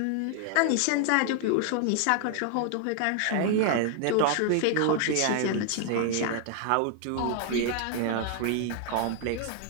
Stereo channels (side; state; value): both; different; correlation 0.00